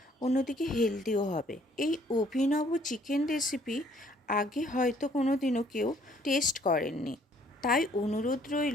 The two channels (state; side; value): normal; both; correlation 0.62